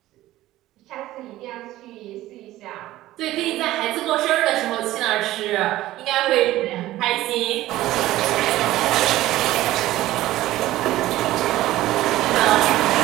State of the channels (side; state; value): left; quieter; 15.6 dB